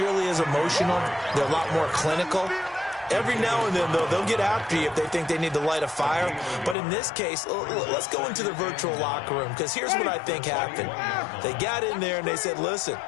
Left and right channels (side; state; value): right; drops out; at 6.8 s